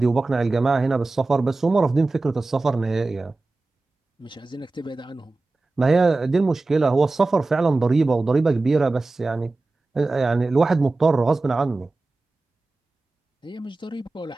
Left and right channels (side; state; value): left; quieter; 3.3 dB